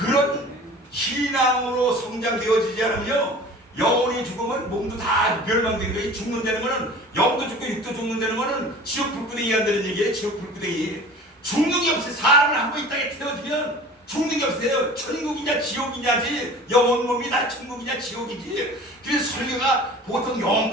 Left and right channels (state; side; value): normal; both; correlation 0.42